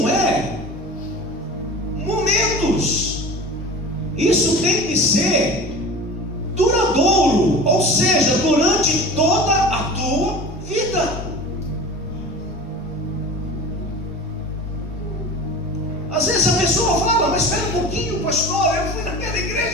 é momentos, isso tem que ser duradouro, ou seja, durante toda a tua vida. Às vezes a pessoa fala: mas espera um pouquinho, pastor, eu fui naquela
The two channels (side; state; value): both; normal; correlation 0.36